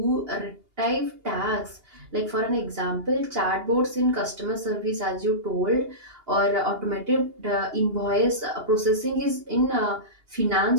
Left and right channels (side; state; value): left; late; 2.8 ms